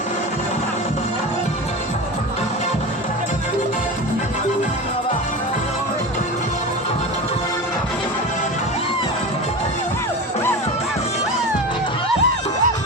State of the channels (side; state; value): both; normal; correlation 0.27